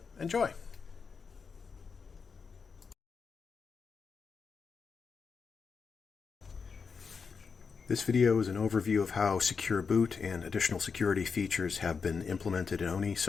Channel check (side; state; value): right; quieter; 5.5 dB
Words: enjoy! This video is an overview of how Secure Boot and additional security features have been implemented in ONIE